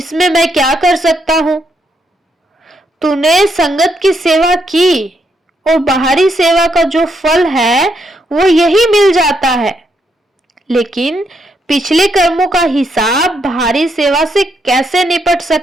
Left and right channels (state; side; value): normal; both; correlation 0.77